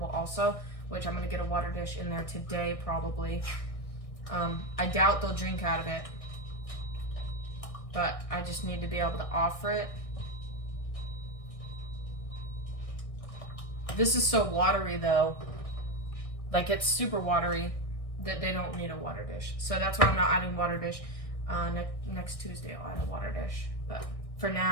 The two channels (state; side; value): late; right; 1.6 ms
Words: also, which I'm gonna get a water dish in there today probably. I doubt they'll drink out of it, but I just need to be able to offer it. This is so watery though, like it's super watery that they don't need a water dish. So that's why I'm not adding water dish. Next Tuesday I'll add a water dish, but for